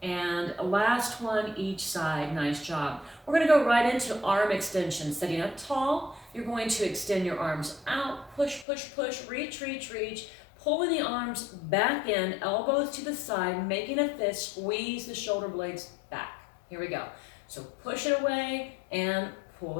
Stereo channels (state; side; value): drops out; right; at 8.7 s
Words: and last one each side. Nice job. We're going to go right into arm extension. Sitting up tall, you're going to extend your arms out. Push, push, push. Reach, reach, reach. Pulling the arms back in, elbows to the side, making a fist. Squeeze the shoulder blades back. Here we go. So push it away and pull